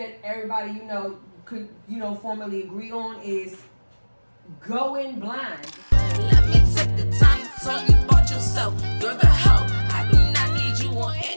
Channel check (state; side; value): inverted; both; correlation -1.00